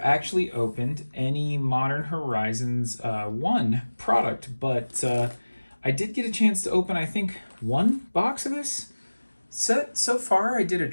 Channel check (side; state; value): both; inverted; correlation -1.00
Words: actually opened any Modern Horizons 1 product, but I did get a chance to open, I think, one box of this set so far. I did a